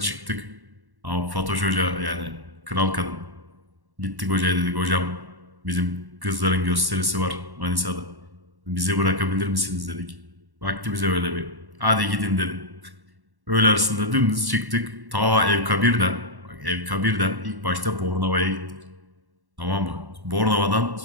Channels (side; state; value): left; late; 1.1 ms